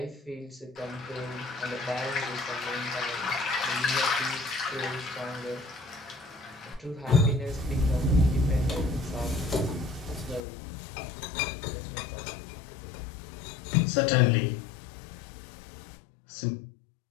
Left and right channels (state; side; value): drops out; right; at 10.4 s